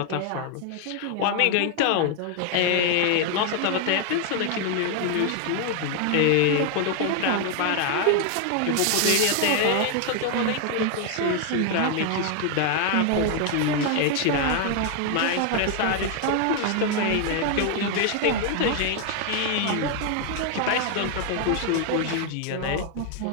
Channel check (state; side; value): different; both; correlation 0.00